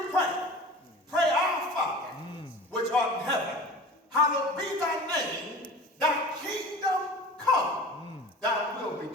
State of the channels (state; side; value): normal; both; correlation 0.38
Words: pray, pray our Father, which art in heaven. Hallowed be thy name. Thy kingdom come. Thy will be